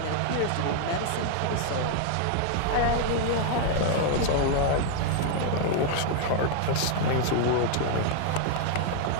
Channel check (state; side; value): different; both; correlation 0.00